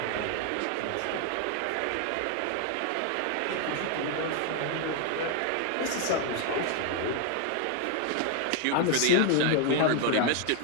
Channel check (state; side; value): different; both; correlation 0.00